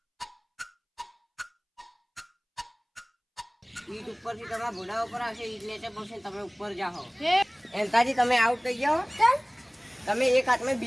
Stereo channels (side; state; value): both; identical; correlation 1.00